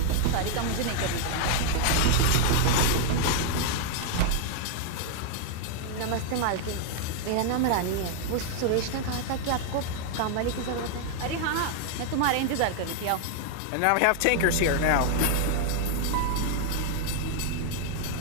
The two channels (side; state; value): both; different; correlation 0.00